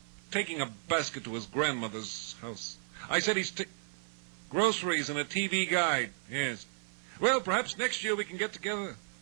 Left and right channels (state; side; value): silent; left; 55 dB below the other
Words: taking a basket to his grandmother's house. I said he's groceries and a TV guide. Yes. Well, perhaps next year we can get together.